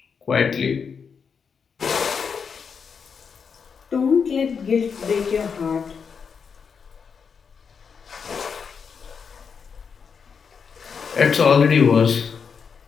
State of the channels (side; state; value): right; quieter; 6.1 dB